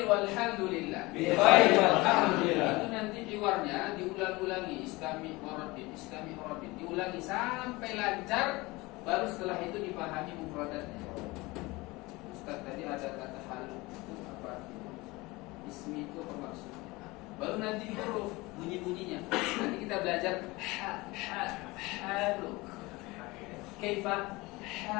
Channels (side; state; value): right; quieter; 22.4 dB